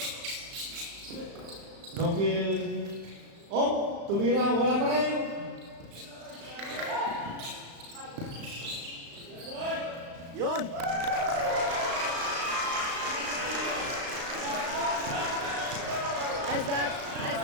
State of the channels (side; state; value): left; late; 35 ms